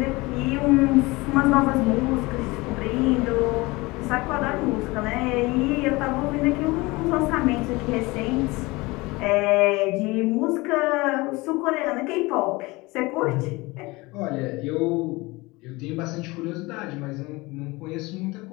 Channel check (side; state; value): right; quieter; 22.8 dB